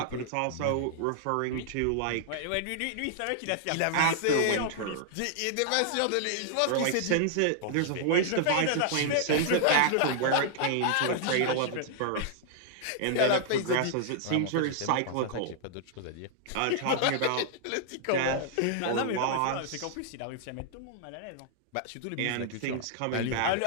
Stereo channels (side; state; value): both; different; correlation -0.01